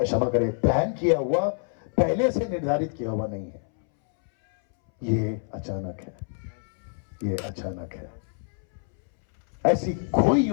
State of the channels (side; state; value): right; silent; 61 dB below the other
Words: करें, प्लान किया हुआ, पहले से निर्धारित किया हुआ नहीं है। ये अचानक है, ये अचानक है। ऐसी कोई